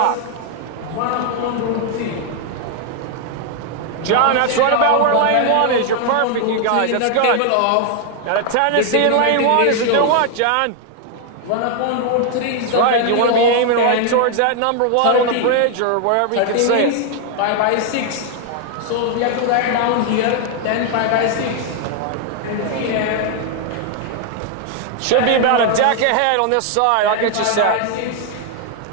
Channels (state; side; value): different; both; correlation 0.00